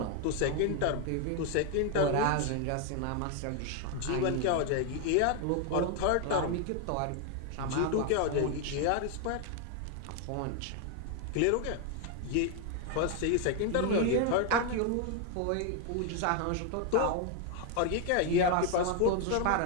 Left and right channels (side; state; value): both; different; correlation 0.01